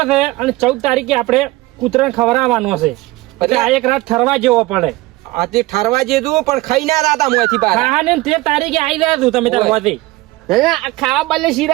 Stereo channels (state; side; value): quieter; left; 19.9 dB